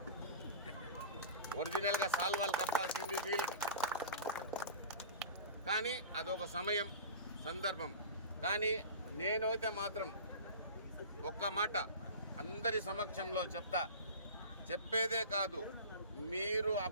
కానీ అదొక సమయం. సందర్భం. కానీ నేనైతే మాత్రం ఒక్క మాట అందరి సమక్షంలో చెప్పేదే కాదు, మీరు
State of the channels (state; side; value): inverted; both; correlation -0.35